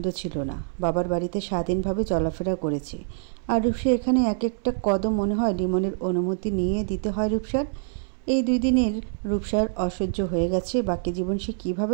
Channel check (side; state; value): left; silent; 61 dB below the other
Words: ছিল না। বাবার বাড়িতে স্বাধীনভাবে চলাফেরা করেছে, আর রূপসা এখানে এক একটা কদম মনে হয় লিমনের অনুমতি নিয়ে দিতে হয় রূপসার। এই 2 দিনের রূপসার অসহ্য হয়ে গেছে। বাকি জীবন সে